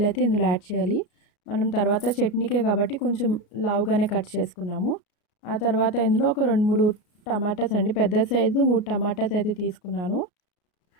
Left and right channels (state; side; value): late; right; 33 ms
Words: అయితే ఇందులో యాడ్ చేయాలి. మనం తర్వాత చట్నీకే కాబట్టి కొంచెం లావుగానే కట్ చేసుకున్నాము. ఆ తర్వాత ఇందులో ఒక 2-3 టమాటాస్ అండి, పెద్ద సైజు 3 టమాటాస్ అయితే తీసుకున్నాను.